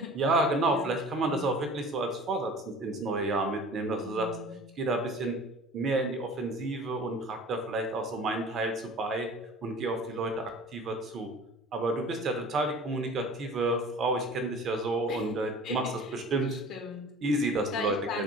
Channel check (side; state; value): both; normal; correlation 0.43